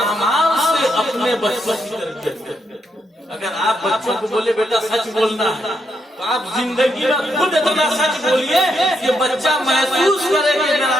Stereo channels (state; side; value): normal; both; correlation 0.79